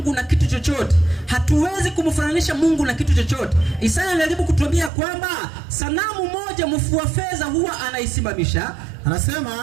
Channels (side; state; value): left; drops out; at 4.9 s